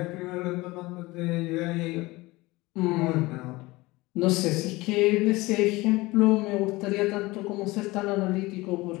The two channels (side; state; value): right; quieter; 21.1 dB